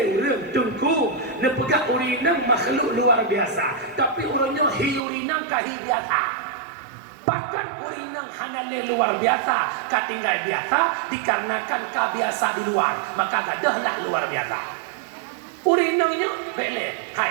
rem tungku nepegak urinang makhluk luar biasa. Tapi orangnya urinang kahi biasa. Bahkan urinang hanale luar biasa, katinggal biasa dikarenakan kebiasa di luar, maka gadahlah luar biasa. Urinangnya bele.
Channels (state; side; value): drops out; left; at 5.0 s